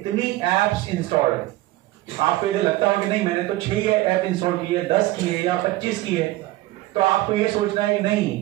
एप्स इंस्टॉल्ड है। आपको यदि लगता हो कि नहीं मैंने तो 6 ऐप इंस्टॉल की है, 10 की है या 25 की है, तो आपको ये सोचना है कि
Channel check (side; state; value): left; quieter; 17.6 dB